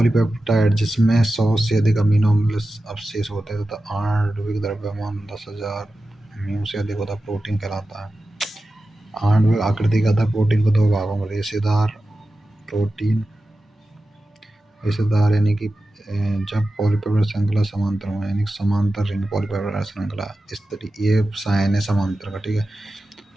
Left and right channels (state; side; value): normal; both; correlation 0.93